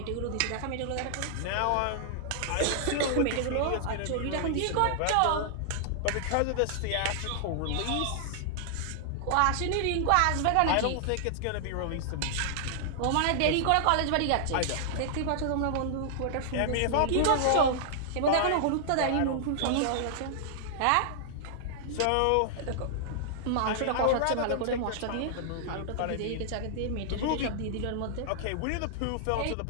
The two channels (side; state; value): both; different; correlation -0.01